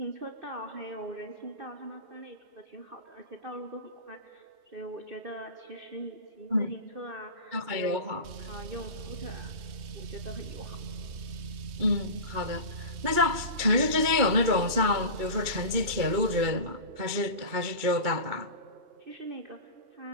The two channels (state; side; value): late; left; 2.3 ms